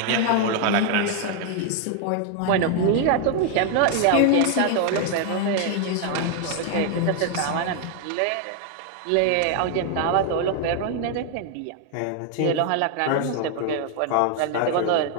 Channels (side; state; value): both; different; correlation 0.00